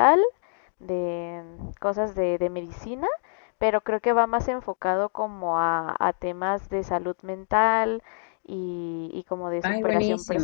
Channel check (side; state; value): right; silent; digital silence